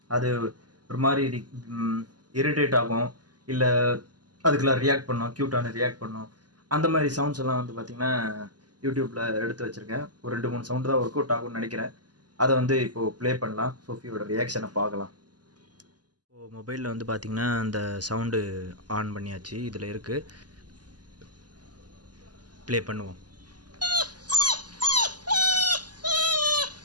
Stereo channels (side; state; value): left; late; 0.70 ms